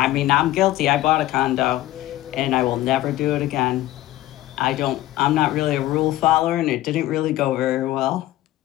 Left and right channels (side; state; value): right; quieter; 15.6 dB